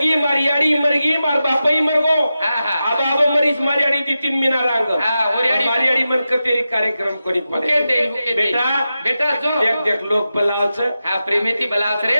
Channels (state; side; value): inverted; both; correlation -0.91